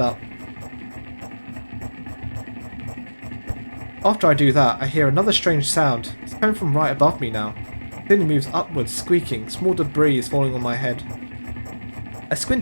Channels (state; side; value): inverted; both; correlation -1.00